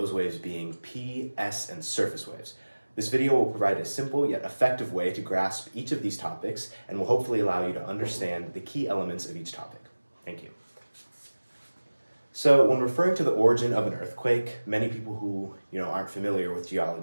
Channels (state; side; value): inverted; both; correlation -1.00